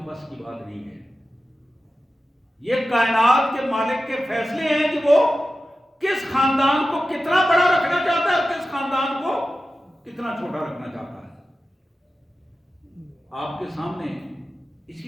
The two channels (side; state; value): both; normal; correlation 0.93